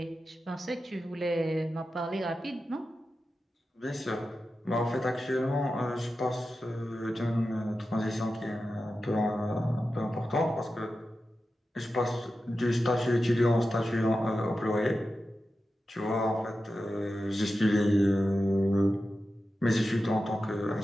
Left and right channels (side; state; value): both; normal; correlation 0.92